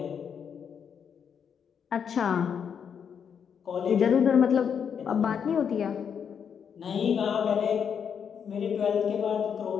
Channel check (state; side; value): quieter; right; 7.4 dB